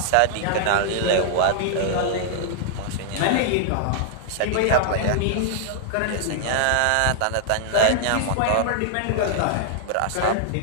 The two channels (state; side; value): different; both; correlation -0.01